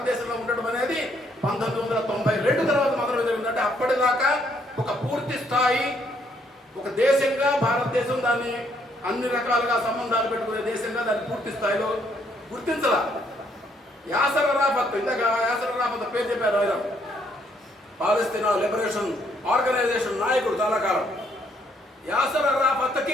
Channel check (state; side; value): normal; both; correlation 0.70